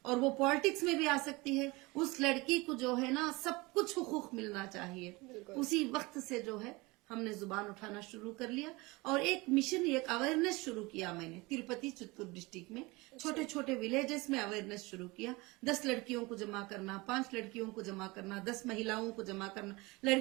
और वो पॉलिटिक्स में भी आ सकती है। उस लड़की को जो है ना, सब कुछ हुकूक मिलना चाहिए। उसी वक्त से जो है हमने जुबान उठाना शुरू कर लिया और एक मिशन, एक अवेयरनेस शुरू किया मैंने तिरुपति चित्तूर डिस्ट्रिक्ट में। छोटे छोटे विलेजेस में अवेयरनेस शुरू किया। 10 लड़कियों को जमा करना, 5 लड़कियों को जमा करना, 10 महिलाओं को जमा करना।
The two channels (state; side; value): quieter; left; 23.7 dB